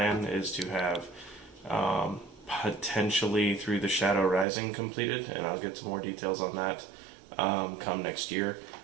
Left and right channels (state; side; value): drops out; left; at 4.5 s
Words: is to have potentially Through the Shadow Rising completed, and I'll get some more details on that come next year.